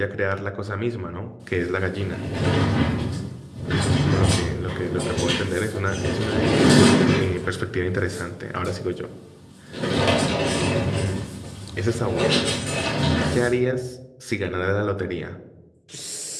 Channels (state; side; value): identical; both; correlation 1.00